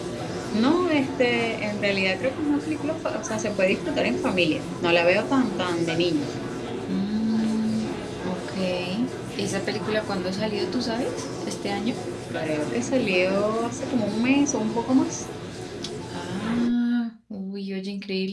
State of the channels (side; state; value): both; identical; correlation 1.00